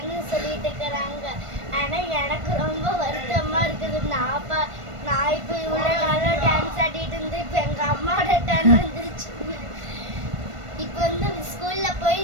சொல்லிட்டு இருக்கிறாங்க. ஆனால் எனக்கு ரொம்ப வருத்தமாக இருக்குது. நான் இப்போ இவ்வளோ நாளாக டான்ஸ் ஆடிட்டு இருந்து இப்போ எங்கள் அம்மாவோட டான்ஸ் வந்துருச்சு. இப்போ வந்து ஸ்கூலில் போய்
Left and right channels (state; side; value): late; left; 1.5 ms